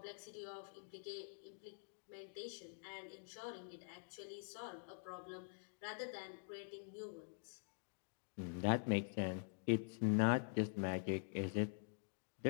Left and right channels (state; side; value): silent; right; digital silence